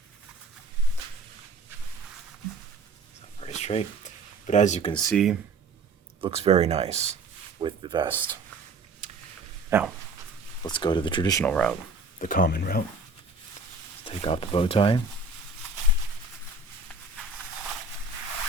Very straight. But as you can see, looks very nice with the vest. Now, let's go to the traditional route, the common route. Take off the bow tie.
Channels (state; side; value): quieter; left; 3.6 dB